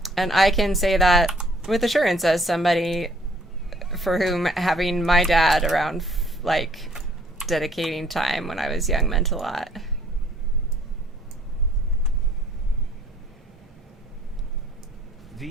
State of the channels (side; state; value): both; normal; correlation 0.61